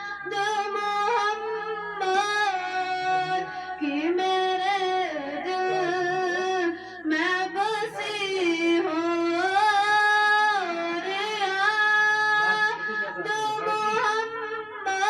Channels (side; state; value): both; identical; correlation 1.00